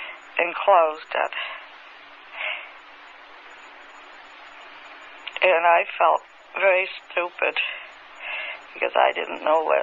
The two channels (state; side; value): identical; both; correlation 1.00